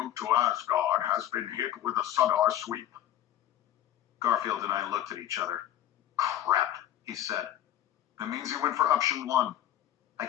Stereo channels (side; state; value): right; quieter; 12.1 dB